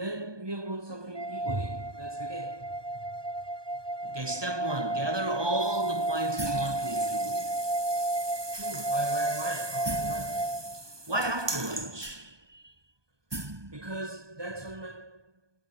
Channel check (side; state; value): left; late; 1.2 ms